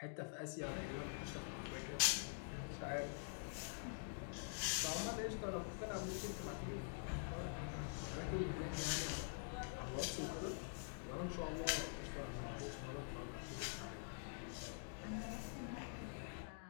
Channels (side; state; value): right; silent; digital silence